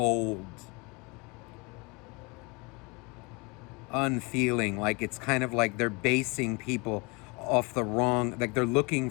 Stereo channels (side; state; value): right; quieter; 28.3 dB